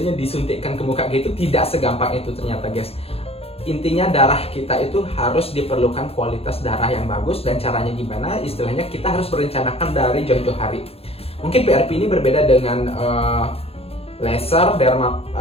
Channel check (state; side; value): late; right; 0.29 ms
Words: disuntikkan ke muka gitu. Tidak segampang itu ternyata guys. Intinya darah kita itu harus diperlukan kualitas darah yang bagus. Dan caranya gimana? Istilahnya kita harus merencanakan dari jauh-jauh hari. Mungkin PRP ini berbeda dengan laser,